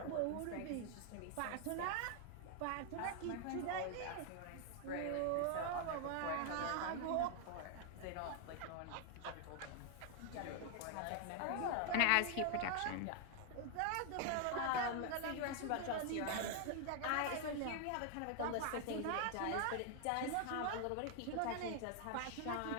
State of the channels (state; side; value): different; both; correlation 0.00